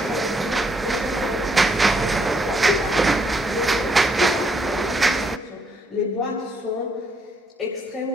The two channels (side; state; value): both; normal; correlation 0.73